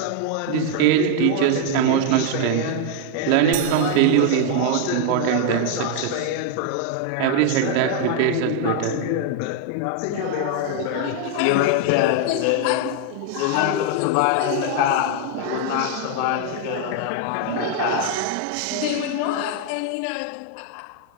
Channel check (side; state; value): both; different; correlation 0.00